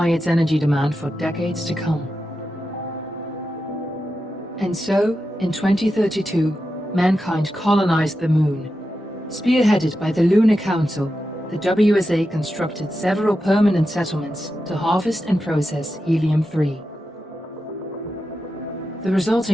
its energy demand for decades to come. And so, in 2032, mankind colonized the Moon. Spearheaded by the Lunar Council, the WSA constructed several permanent settlements to harvest and process helium-3. The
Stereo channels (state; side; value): normal; both; correlation 0.89